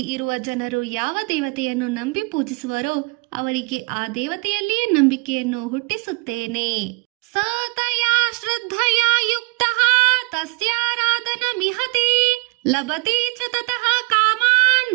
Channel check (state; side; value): quieter; left; 30.9 dB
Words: ಇರುವ ಜನರು ಯಾವ ದೇವತೆಯನ್ನು ನಂಬಿ ಪೂಜಿಸುವರೋ ಅವರಿಗೆ ಆ ದೇವತೆಯಲ್ಲಿಯೇ ನಂಬಿಕೆಯನ್ನು ಹುಟ್ಟಿಸುತ್ತೇನೆ. ಸತಯಾ ಶ್ರದ್ಧಯಾ ಯುಕ್ತಃ ತಸ್ಯಾರಾಧನ ಮಿಹತೆ ಲಭತೆ ಚ ತತಃ ಕಾಮಾನ್